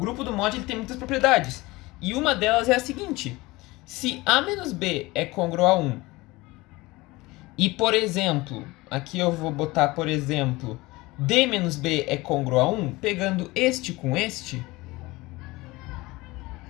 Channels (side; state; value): right; quieter; 21.3 dB